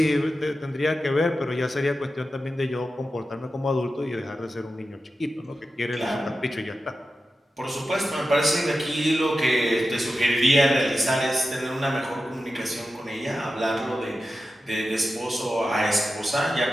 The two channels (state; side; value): normal; both; correlation 0.92